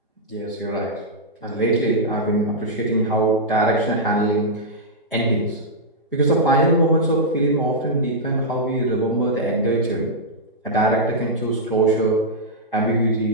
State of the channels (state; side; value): normal; both; correlation -0.09